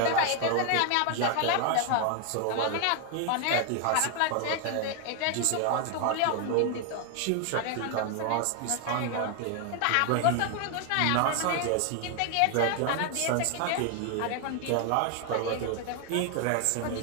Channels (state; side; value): different; both; correlation 0.01